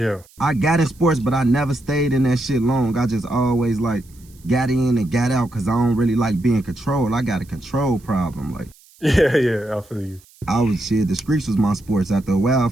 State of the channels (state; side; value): noise; right; hiss, 28 dB below the sound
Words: I got in sports, but I never stayed in that shit long. I just always like got in and got out because I don't really like being controlled. I got a control problem. Like yeah, I feel you. I was shit. The streets was my sports after a while.